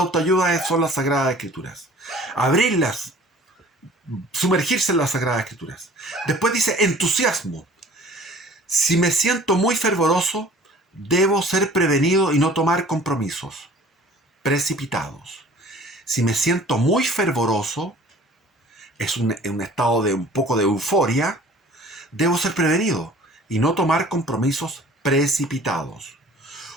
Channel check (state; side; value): normal; both; correlation 0.49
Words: son las Sagradas Escrituras. Abrirlas, sumergirse en las Sagradas Escrituras. Después dice entusiasmo. Si me siento muy fervoroso, debo ser prevenido y no tomar compromisos precipitados. Si me siento muy fervoroso, es un estado de un poco de euforia, debo ser prevenido y no tomar compromisos precipitados.